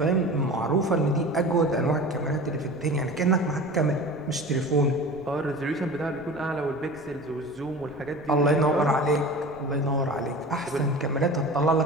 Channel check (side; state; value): left; noise; rumble, 24 dB below the sound